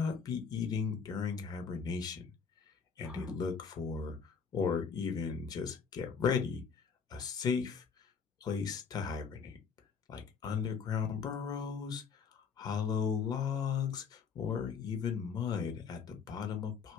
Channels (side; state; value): right; quieter; 6.0 dB